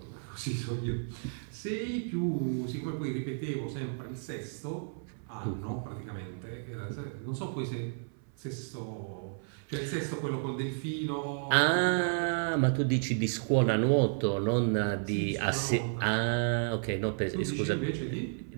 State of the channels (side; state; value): left; silent; 56 dB below the other